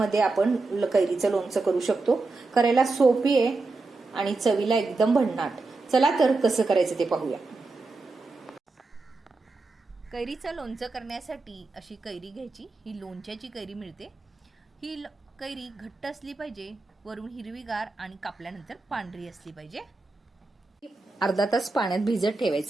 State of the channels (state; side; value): quieter; left; 3.6 dB